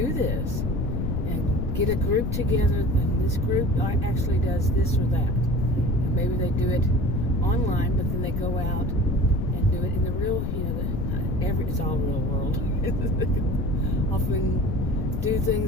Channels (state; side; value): noise; left; rumble, 2 dB below the sound